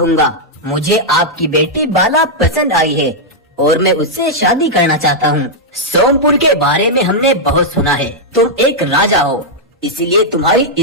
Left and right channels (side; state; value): both; normal; correlation -0.05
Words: मुझे आपकी बेटी बाला पसंद आई है और मैं उससे शादी करना चाहता हूँ। सोमपुर के बारे में हमने बहुत सुना है, तुम एक राजा हो, इसलिए तुम्हारी